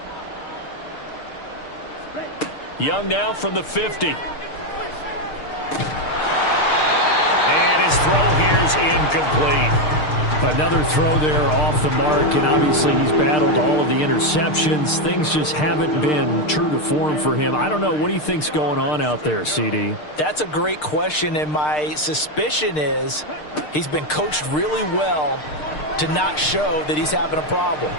Young now from the 50. And his throw here's incomplete. Another throw there off the mark, and obviously he's battled all of the interceptions. Things just haven't been true to form for him. I don't know. What do you think's going on out there, CD? That's a great question, and my suspicion is he's been coached really well to not show that he's having a problem.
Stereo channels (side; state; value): right; late; 6.6 ms